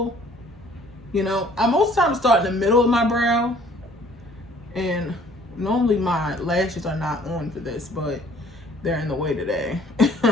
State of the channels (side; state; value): both; normal; correlation 0.56